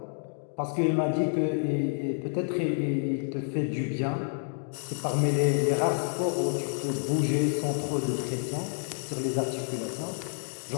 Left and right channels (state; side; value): silent; right; digital silence